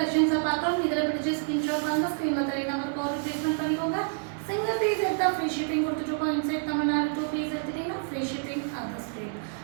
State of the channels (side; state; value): left; silent; digital silence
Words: பார்க்கறோம். இதல பிடிச்ச ஸ்கிரீன்ஷாட் வாங்க, ஸ்கிரீன்ல தெரிய நம்பருக்கு ஆர்டர் ப்ளேஸ்மென்ட் பண்ணிக்கோங்க. சிங்கிள் பீஸ் எடுத்தா ஃப்ரீ ஷிப்பிங் கொடுத்துட்டோம். இன்சைட் தமிழ்நாடு 2 பீஸ் எடுத்தீங்கன்னா ஃப்ரீ ஷிப்பிங் அதர் ஸ்டேட்.